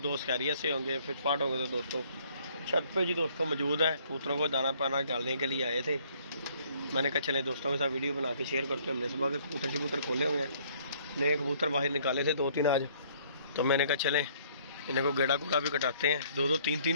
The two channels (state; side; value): inverted; both; correlation -0.61